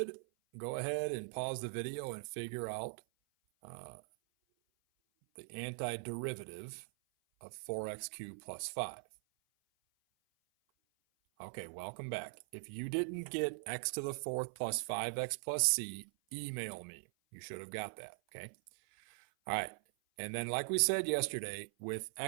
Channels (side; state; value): left; silent; 51 dB below the other